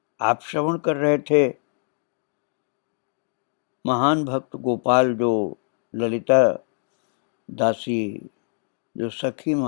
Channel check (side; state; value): right; silent; digital silence